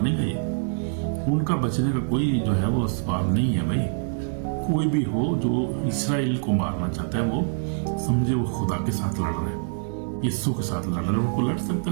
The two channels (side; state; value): left; silent; digital silence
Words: है ये। उनका बचने का कोई जो है वो सवाल नहीं है भाई। कोई भी हो जो इसराइल को मारना चाहता है, वो समझे वो खुदा के साथ लड़ रहा है, यीशु के साथ लड़ रहा है। उनको लड़ सकता